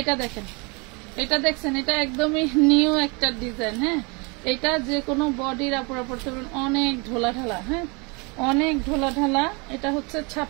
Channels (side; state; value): left; quieter; 30.2 dB